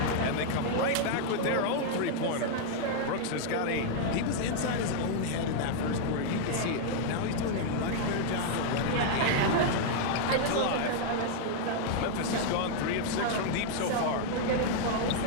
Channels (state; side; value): different; both; correlation -0.01